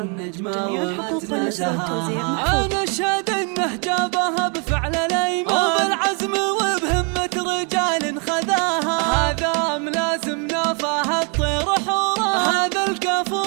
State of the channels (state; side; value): quieter; left; 36.0 dB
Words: جميع الحقوق والنسخ والتوزيع محفوظ. أنا أشهد إنه جابها بفعل الأيمان وبالعزم وبهمة رجال خذاها، هذا ملازم نافاها الطير حورا، هذا الكفو